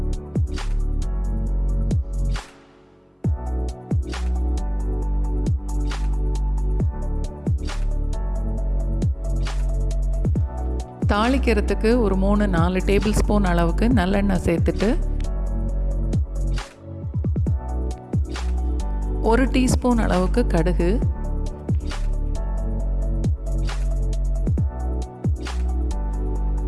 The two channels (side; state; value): both; identical; correlation 1.00